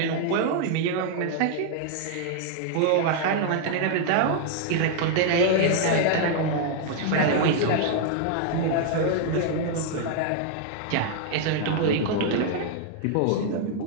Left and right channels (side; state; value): both; different; correlation 0.00